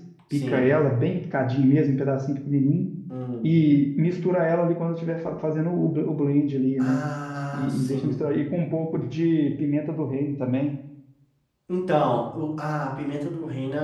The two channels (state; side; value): identical; both; correlation 1.00